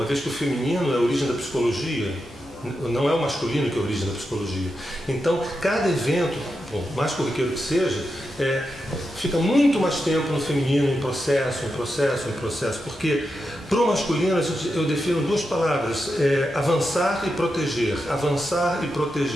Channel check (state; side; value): normal; both; correlation 0.88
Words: vez que o feminino é a origem da psicologia, não é o masculino que é a origem da psicologia. Então, cada evento, por mais corriqueiro que seja, fica muito mais tempo no feminino, em processo, porque para o masculino eu defino duas palavras, avançar e proteger, avançar e